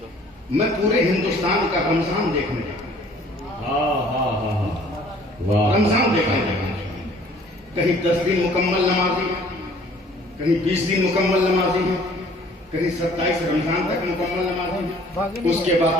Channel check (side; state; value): both; normal; correlation 0.55